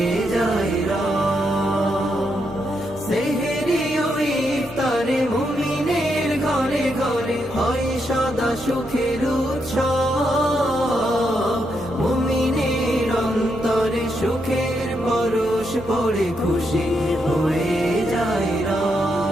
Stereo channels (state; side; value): noise; right; hum, 20 dB below the sound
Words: যায় রব। সেহরি ও ইফতারে মুমিনের ঘরে ঘরে হয় সদা সুখের উৎসব। মুমিনের অন্তরে সুখের পরশ পড়ে খুশি হয়ে যায়